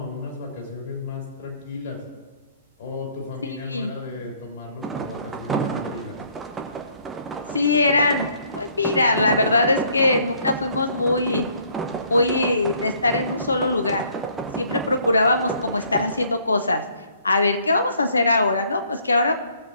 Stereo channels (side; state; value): both; inverted; correlation -0.63